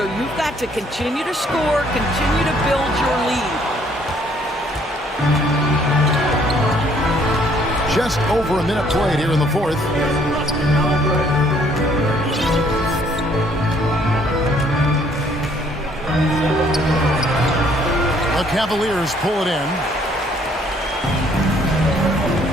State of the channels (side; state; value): both; normal; correlation 0.63